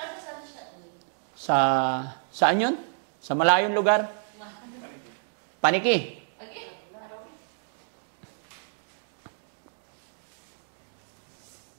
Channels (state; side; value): silent; left; digital silence